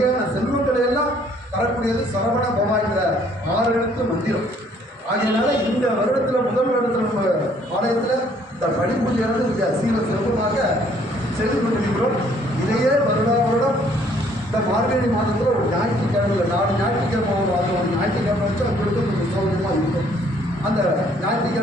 செல்வங்களை எல்லாம் தரக்கூடியது சரவண பவா என்ற 6 எழுத்து மந்திரம். ஆகையினால இந்த வருடத்தில் முதல் வருடத்தில் நம்ம ஆலயத்தில் இந்த படிப்பூஜையானது மிக சீர சிறப்பாக செய்து கொண்டிருக்கிறோம். இதையே வருடம் இந்த மார்கழி மாதத்தில் ஒரு ஞாயிற்றுக்கிழமை, 4 ஞாயிற்றுக்கிழமை ஒரு ஞாயிற்றுக்கிழமை வச்சு அவங்களுக்கு கொஞ்சம் சௌகரியமாக இருக்கும். அந்த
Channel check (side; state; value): both; normal; correlation 0.62